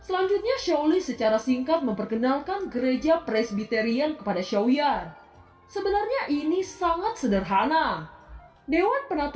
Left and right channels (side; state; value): both; identical; correlation 1.00